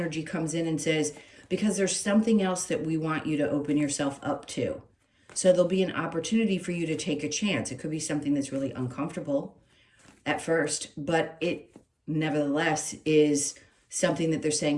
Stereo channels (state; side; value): identical; both; correlation 1.00